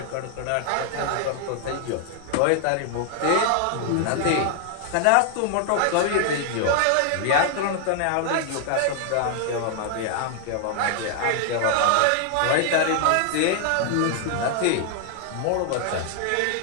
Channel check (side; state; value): both; different; correlation 0.00